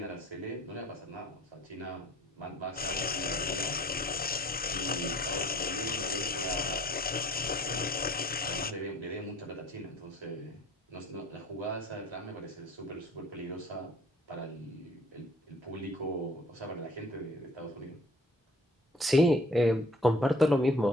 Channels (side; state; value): both; normal; correlation 0.53